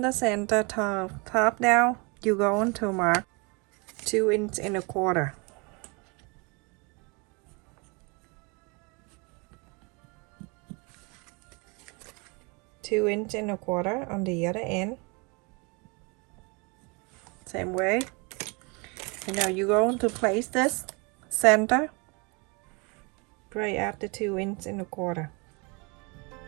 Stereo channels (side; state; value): left; quieter; 30.1 dB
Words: the center top down, you're going to mark 2 inch and 1/4. Two inch and 1/4 on the other end. Same way. And now you're going to place this center right at the 2 inch and 1/4.